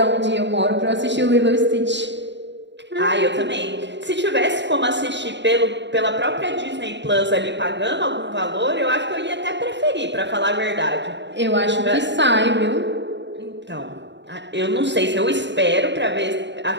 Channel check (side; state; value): left; late; 0.52 ms